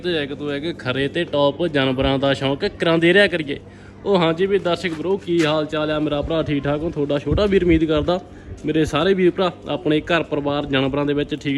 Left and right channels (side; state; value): both; identical; correlation 1.00